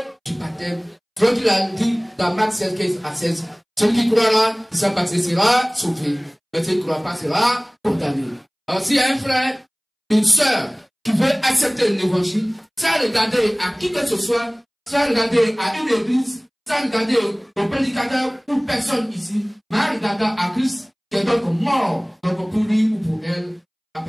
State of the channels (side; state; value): both; identical; correlation 1.00